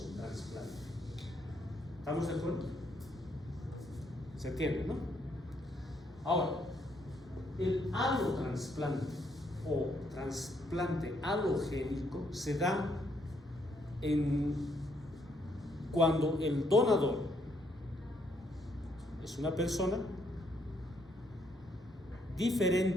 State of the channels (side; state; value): both; normal; correlation 0.72